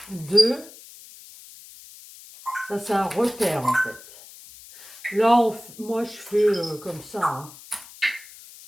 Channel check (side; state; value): left; noise; hiss, 19 dB below the sound